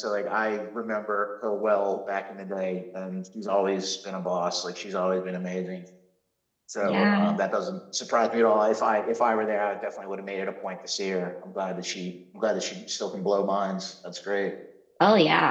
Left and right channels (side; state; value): both; identical; correlation 1.00